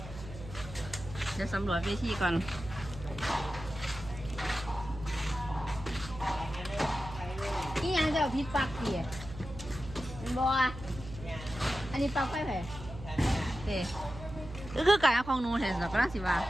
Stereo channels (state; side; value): noise; right; hum, 13 dB below the sound